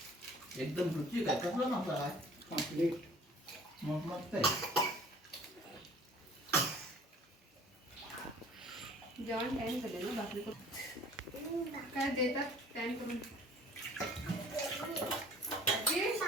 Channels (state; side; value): normal; both; correlation 0.51